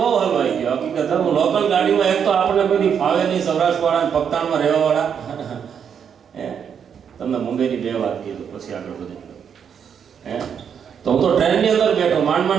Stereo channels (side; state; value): left; quieter; 7.6 dB